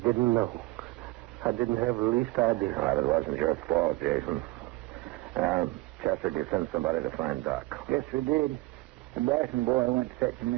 know. I didn't have the least idea. Well, it wasn't your fault, Jason. Chester, did you send somebody to find Doc? Yes, we did. The Bryson boy went to fetch him,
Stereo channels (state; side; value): quieter; left; 20.4 dB